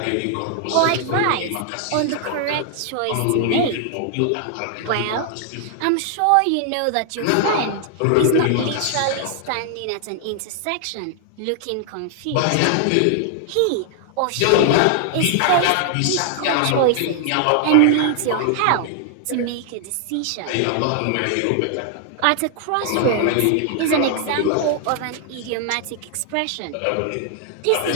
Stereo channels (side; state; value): both; different; correlation 0.00